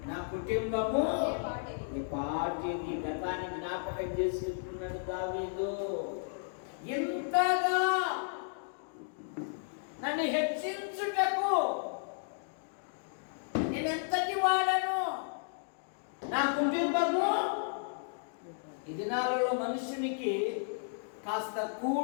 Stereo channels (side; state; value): right; silent; digital silence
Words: నా కుటుంబము ఈ పార్టీని గతాన్ని జ్ఞాపకం చేసుకుంటున్నాడు దావీదు. ఎంతగా నన్ను హెచ్చించుటకు నేనెంతటి వాడను, నా కుటుంబము. ఈ దినాలలో మనుషునికి కాస్త